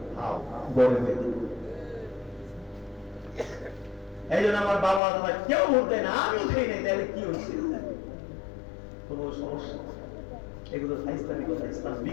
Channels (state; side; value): drops out; right; at 5.0 s